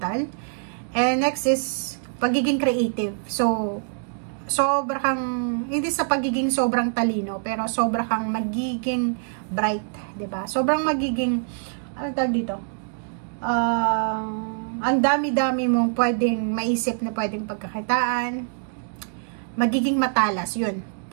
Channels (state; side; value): silent; left; digital silence